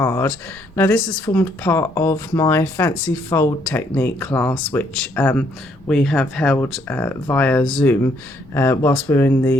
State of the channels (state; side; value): normal; both; correlation 0.69